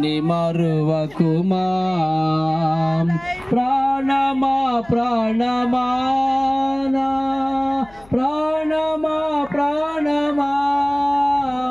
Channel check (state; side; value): noise; left; hum, 25 dB below the sound